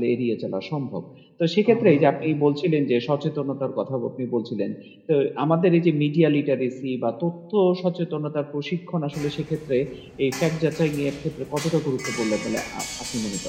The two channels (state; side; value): identical; both; correlation 1.00